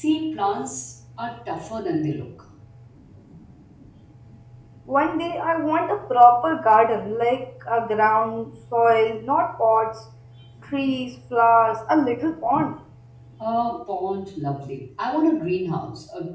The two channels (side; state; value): both; identical; correlation 1.00